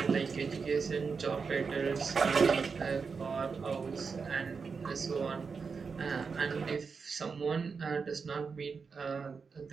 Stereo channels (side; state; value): left; quieter; 5.3 dB